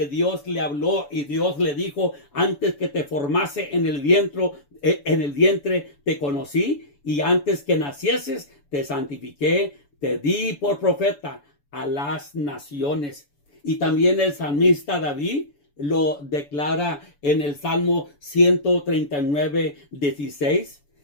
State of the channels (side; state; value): right; late; 7.0 ms